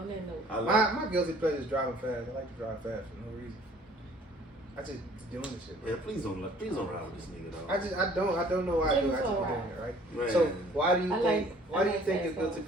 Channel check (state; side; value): normal; both; correlation 0.55